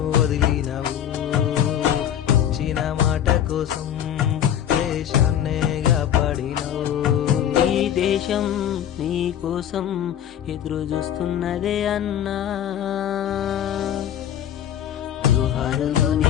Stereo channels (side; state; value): right; quieter; 10.3 dB